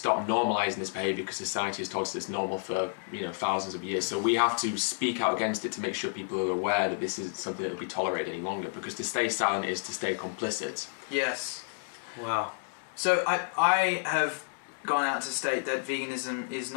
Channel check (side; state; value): right; silent; 58 dB below the other